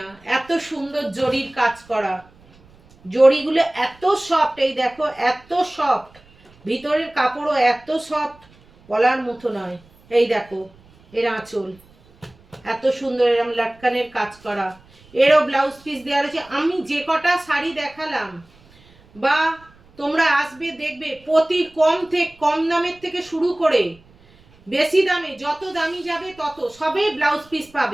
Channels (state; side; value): noise; right; rumble, 28 dB below the sound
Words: এত সুন্দর জরির কাজ করা। জড়িগুলো এত সফট, এই দেখো এত সফট, ভিতরের কাপড়ও এত সফট, বলার মতো নয়। এই দেখো এর আঁচল এত সুন্দর, এরকম লাটকানের কাজ করা, এরও ব্লাউজ পিস দেওয়া রয়েছে। আমি যে কটা শাড়ি দেখালাম বা তোমরা আসবে দেখবে, প্রতি কম দামের থেকে শুরু করে বেশি দামে, যত দামি যাবে তত সবে ব্লাউজ পিস